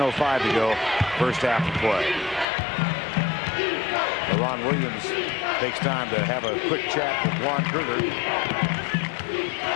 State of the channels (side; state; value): right; drops out; at 2.5 s